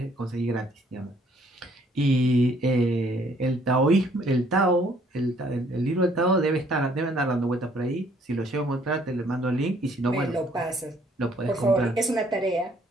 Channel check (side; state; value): both; normal; correlation 0.63